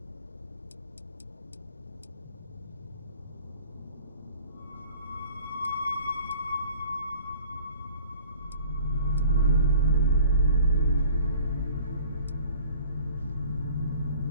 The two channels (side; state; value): both; inverted; correlation -0.48